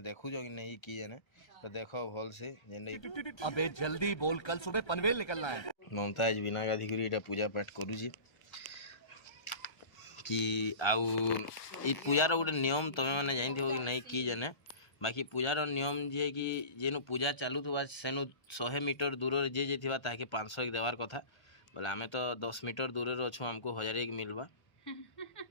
देखु जो कि नहीं की जने तो देखो भल से जेने अबे जल्दी बोल, कल सुबह पनवेल निकलना है। ममताज बिना गाधी करी एटा पूजा पाठ करू छी कि आउ ई पूजार गोटे नियम तमे माने जानथि हो कि नहीं की जने बाकी पूजार नियम जे कि जेनु पूजा चालू थुबा सेनु 100 मीटर दूर जे जे थिबा ताके 500 एक देवार कथा बोले आमे तो 10 मीटर दूर रे अछु हमको 1000 एक मिलबा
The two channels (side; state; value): right; late; 1.3 ms